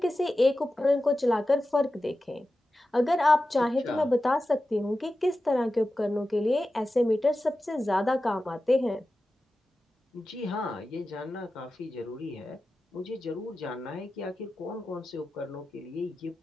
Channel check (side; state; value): both; normal; correlation 0.93